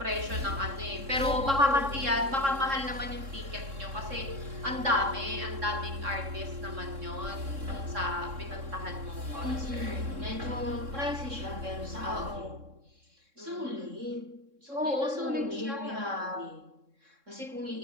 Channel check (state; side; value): late; left; 3.7 ms